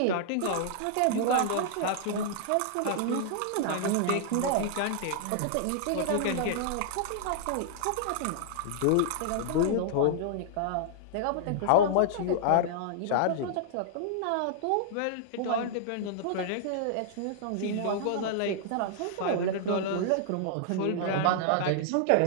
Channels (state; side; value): different; both; correlation -0.01